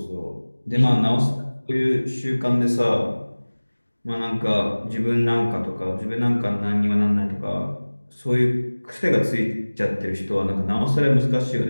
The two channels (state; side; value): inverted; both; correlation -1.00